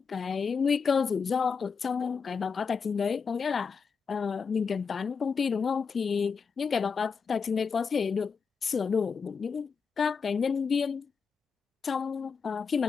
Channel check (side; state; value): right; quieter; 5.7 dB